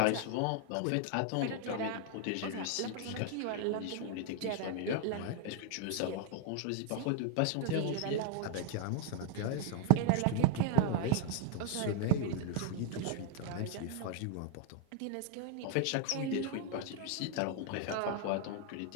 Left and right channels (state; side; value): different; both; correlation 0.01